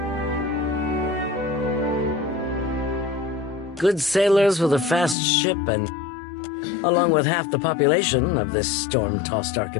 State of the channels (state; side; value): drops out; right; at 5.2 s